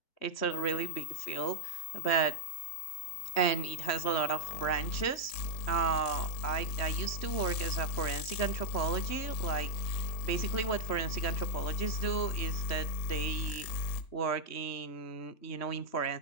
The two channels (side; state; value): right; late; 3.1 ms